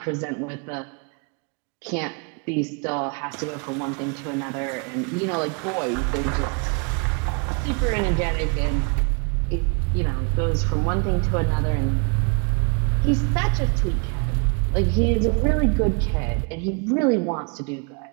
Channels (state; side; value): quieter; left; 36.5 dB